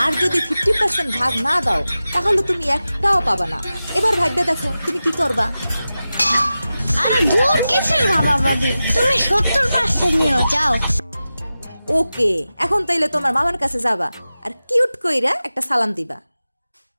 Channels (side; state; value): both; inverted; correlation -0.94